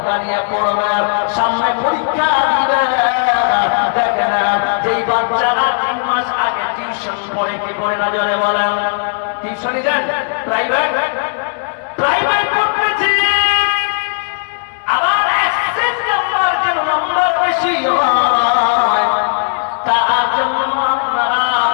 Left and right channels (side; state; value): right; silent; digital silence